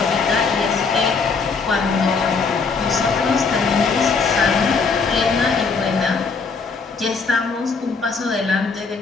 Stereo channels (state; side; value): quieter; right; 4.8 dB